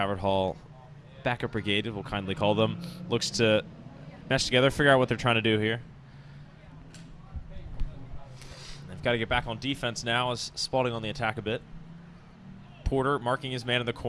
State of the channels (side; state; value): both; identical; correlation 1.00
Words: Hall backup brigade, we'll kindly call them. Looks to mesh together, figure out what they're trying to do here. They've got to get back on defense now as Spalding on the attack a bit. Porter marking his man in the